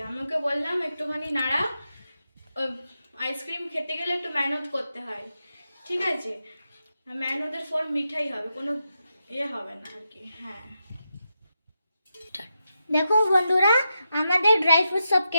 আমি ওকে বললাম একটুখানি নাড়া, আইসক্রিম খেতে গেলে একটু মেহনত করতে হয়। ঠিক আছে, মেহনতের ফল মিঠাই হবে, কোনো হবে না আর কি। হ্যাঁ, দেখো বন্ধুরা, আমাদের ড্রাই ফ্রুট সব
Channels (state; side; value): inverted; both; correlation -0.87